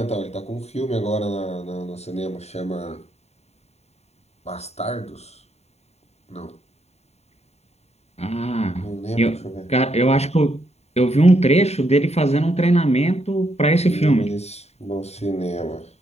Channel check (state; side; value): late; right; 0.31 ms